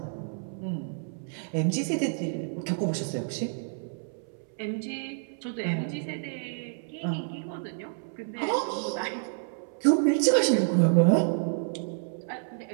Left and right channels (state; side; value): silent; left; 58 dB below the other